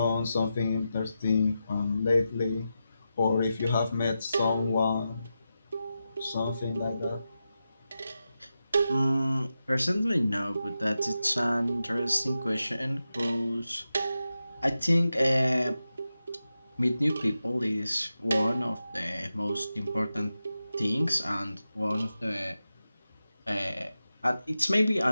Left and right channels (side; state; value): both; inverted; correlation -0.90